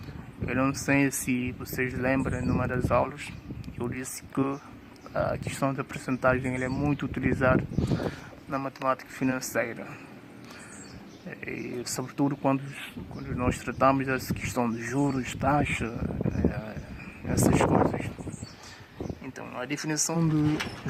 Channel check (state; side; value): identical; both; correlation 1.00